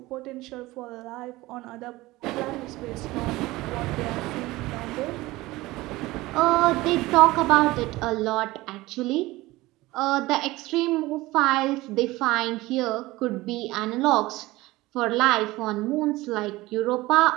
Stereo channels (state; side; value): quieter; left; 19.3 dB